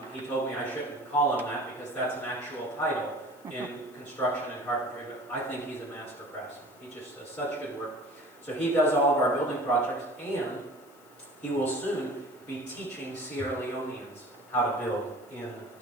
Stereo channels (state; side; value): noise; left; hiss, 27 dB below the sound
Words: He told me I shouldn't call him that because that's an actual title in construction and carpentry, but I think he's a master craftsman. He just does such good work. So he does all of our building projects, and he will soon be teaching Sierra Leoneans how to build in